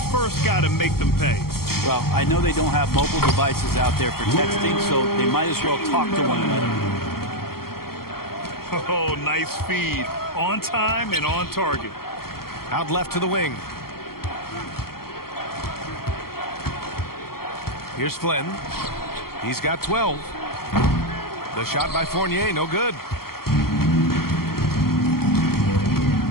guy to make them pay. Well, I know they don't have mobile devices out there for texting, so they might as well talk to one another. Oh, nice feed. On time and on target. Out left to the wing. Here's Flynn. He's got 12. The shot by Fournier, no good.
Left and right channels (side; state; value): right; late; 0.94 ms